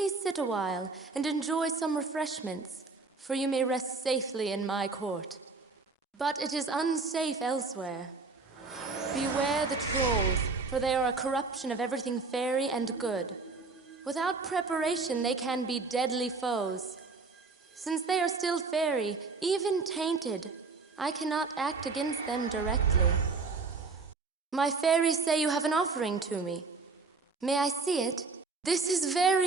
sit a while and enjoy some refreshments, for you may rest safely in my court. But it is unsafe elsewhere. Beware the trolls, for they are a corruption of everything fairy and good. Without preparation, they can be deadly foes. Since they are still fairy, even tainted, I cannot act against them directly. My fairies say you have an offering to me. May I see it? This is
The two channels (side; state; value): left; quieter; 4.1 dB